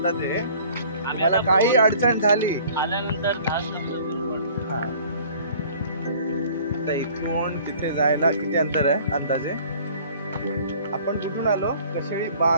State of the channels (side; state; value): both; inverted; correlation -0.52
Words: हे. मला काही अडचण झाली आल्यानंतर आता इथून तिथे जायला किती अंतर आहे अंदाजे? आपण कुठून आलो? कशेळी